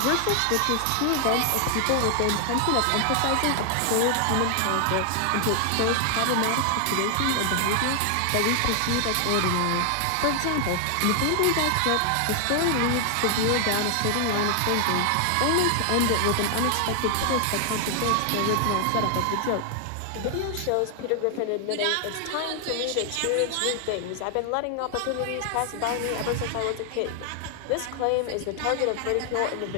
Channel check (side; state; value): both; different; correlation 0.00